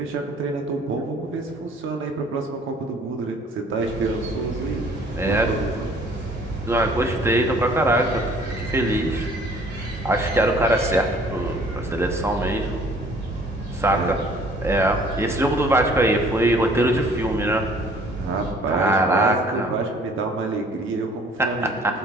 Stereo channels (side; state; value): both; normal; correlation 0.55